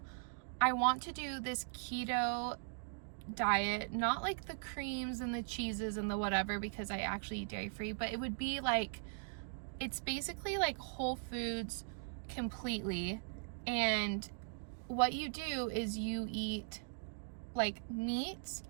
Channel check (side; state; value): left; silent; digital silence